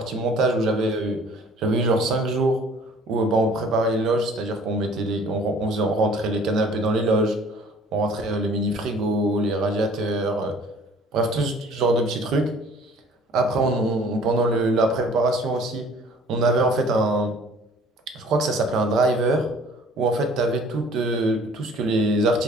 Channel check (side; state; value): both; normal; correlation 0.52